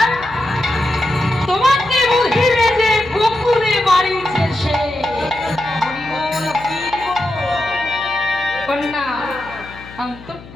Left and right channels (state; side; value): noise; left; hum, 18 dB below the sound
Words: তোমাকে বুঝিবে যে গোকুলে বাড়িছে সে। কন্যা